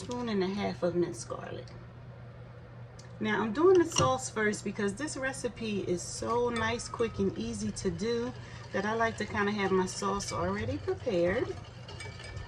of minced garlic. Now I'm doing the sauce first because this recipe is so nice, quick, and easy to do that I like to kind of have my sauce already prepared.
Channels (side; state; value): both; identical; correlation 1.00